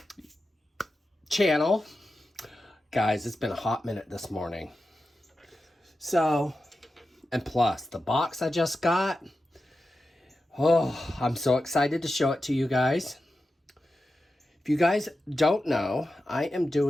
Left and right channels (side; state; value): both; normal; correlation 0.91